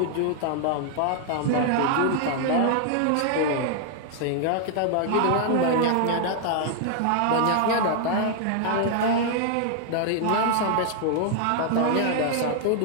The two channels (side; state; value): both; different; correlation 0.00